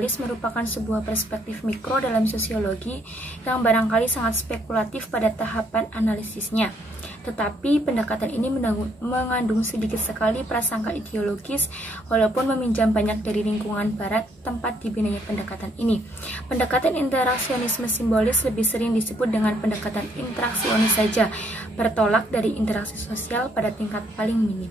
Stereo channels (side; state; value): both; normal; correlation 0.69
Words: merupakan sebuah perspektif mikro dalam sosiologi yang barangkali sangat spekulatif pada tahapan analisisnya. Tetapi pendekatan ini mengandung sedikit sekali prasangka ideologis, walaupun meminjam banyak dari lingkungan barat tempat dibinanya pendekatan ini. Pendekatan interaksionisme simbolis lebih sering disebut dengan pendekatan interaksionis saja, bertolak dari interaksi sosial pada tingkat paling